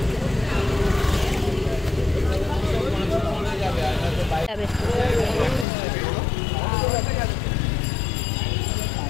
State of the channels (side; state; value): right; drops out; at 5.7 s